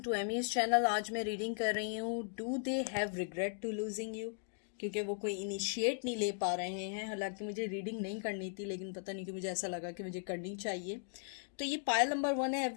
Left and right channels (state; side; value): silent; right; digital silence